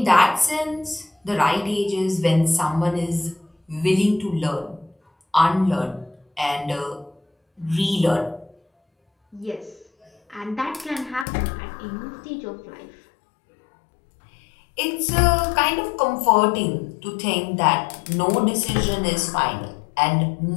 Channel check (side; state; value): right; drops out; at 11.2 s